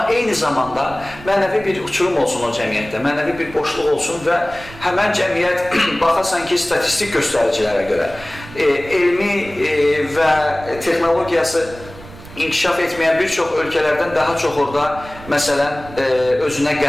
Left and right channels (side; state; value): right; noise; rumble, 17 dB below the sound